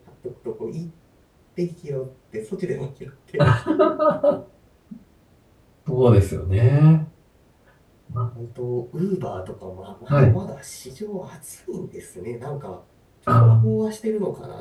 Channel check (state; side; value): identical; both; correlation 1.00